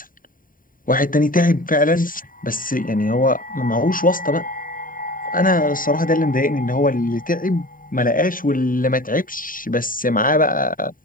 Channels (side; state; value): right; late; 0.40 ms